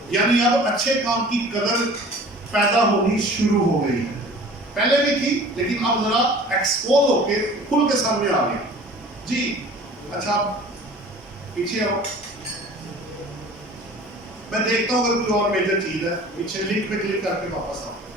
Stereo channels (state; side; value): normal; both; correlation 0.45